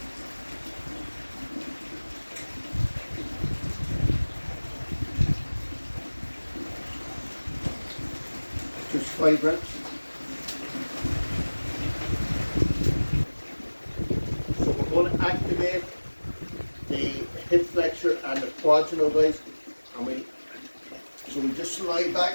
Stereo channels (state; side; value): inverted; both; correlation -1.00